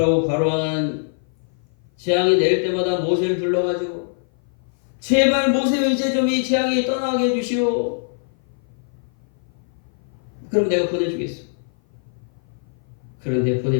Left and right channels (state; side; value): silent; right; 56 dB below the other